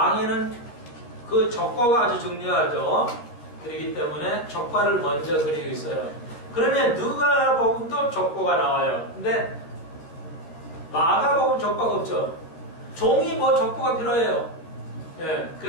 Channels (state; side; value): late; right; 13 ms